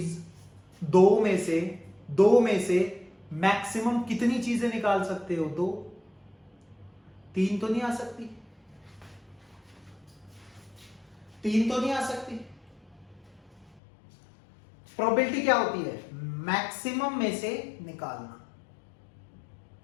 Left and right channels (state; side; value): drops out; right; at 13.8 s